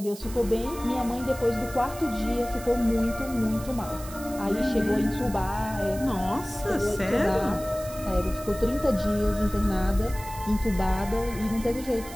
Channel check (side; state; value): right; noise; hiss, 15 dB below the sound